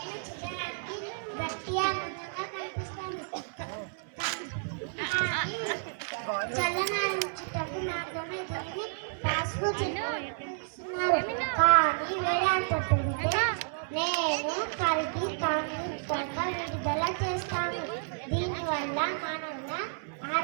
చూడడానికి గట్టిగా అందంగా కనిపిస్తాను, చల్లనారించుటకు నాతోనే దీన్ని పాస్కు చెప్తున్నారు. కానీ వేడంత పెడితే నేను కరిగి కాంతిక విడుదల చేస్తాను. దీనివల్ల మానవుల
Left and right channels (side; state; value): left; silent; digital silence